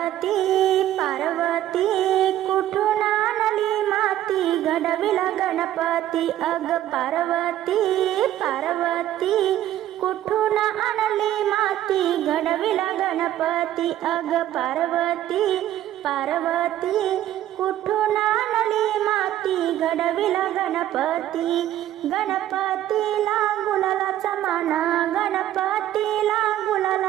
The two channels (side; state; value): left; quieter; 12.8 dB